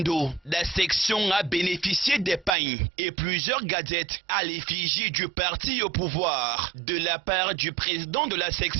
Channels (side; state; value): left; drops out; at 2.6 s